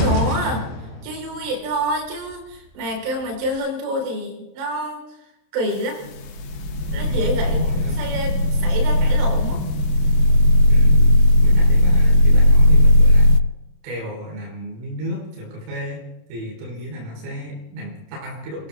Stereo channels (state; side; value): late; left; 26 ms